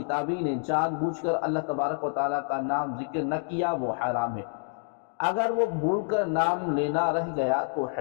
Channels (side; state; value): right; silent; 59 dB below the other